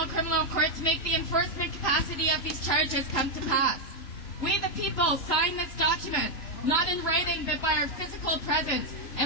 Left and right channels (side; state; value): right; late; 3.0 ms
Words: Criminal Court to make the enforcement capacity of these charges come to pass. We the people sign this document, not in writing but by our physical presence